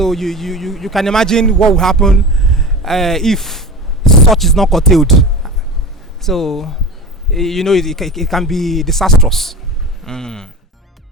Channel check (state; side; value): normal; both; correlation 0.29